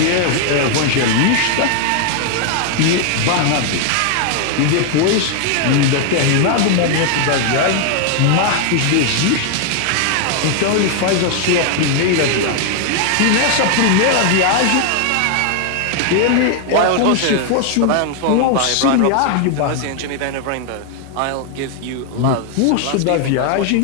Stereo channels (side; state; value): both; different; correlation 0.00